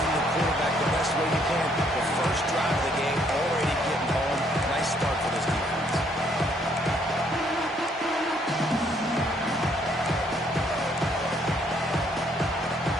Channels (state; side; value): normal; both; correlation 0.68